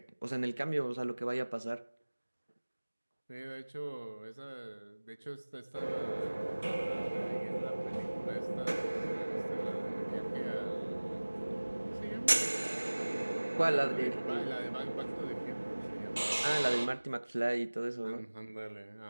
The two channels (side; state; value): both; inverted; correlation -1.00